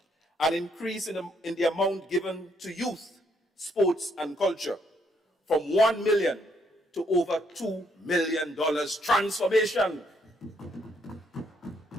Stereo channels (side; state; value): both; normal; correlation 0.72